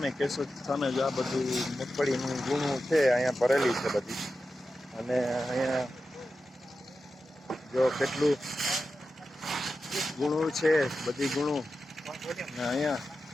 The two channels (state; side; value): normal; both; correlation 0.92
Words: કેશોદ સામે જો આ બધું મગફળીનું ગુણું છે અહીંયા ભરેલી છે બધી. અને અહીંયા જો કેટલું ગુણું છે બધી ગુણું. અને અહીંયા